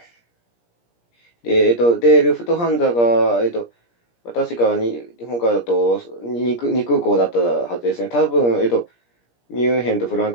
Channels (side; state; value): right; late; 17 ms